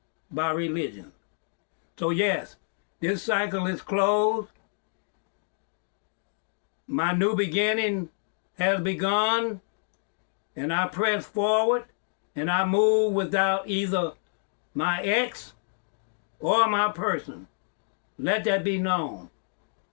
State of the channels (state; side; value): silent; right; digital silence